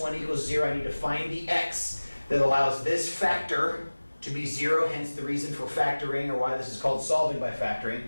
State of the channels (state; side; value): inverted; both; correlation -1.00